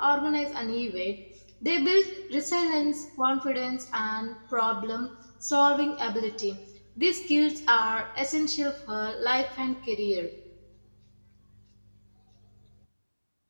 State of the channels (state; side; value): inverted; both; correlation -1.00